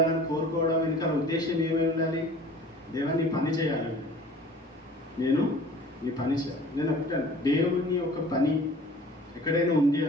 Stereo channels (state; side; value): normal; both; correlation 0.47